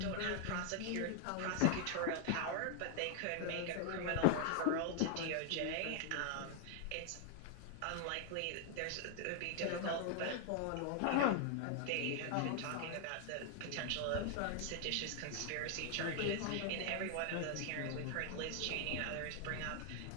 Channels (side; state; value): both; different; correlation 0.00